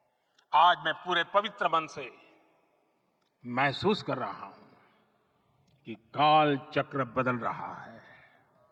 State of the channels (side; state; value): both; identical; correlation 1.00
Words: आज मैं पूरे पवित्र मन से महसूस कर रहा हूं कि काल चक्र बदल रहा है।